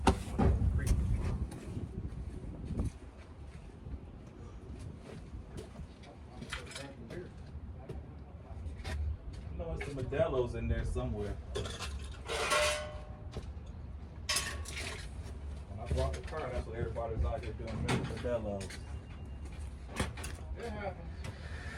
I know there's some Modelo's in there somewhere. When I brought the car, that's what everybody's out here doing, Modelo's. It happens.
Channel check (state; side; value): identical; both; correlation 1.00